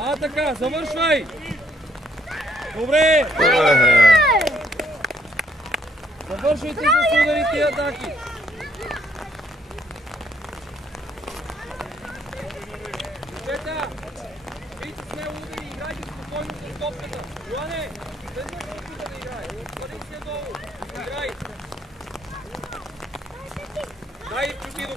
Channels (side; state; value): both; normal; correlation 0.68